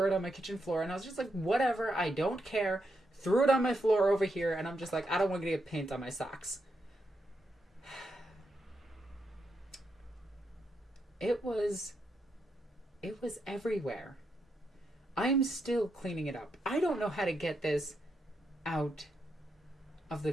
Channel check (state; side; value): normal; both; correlation 0.82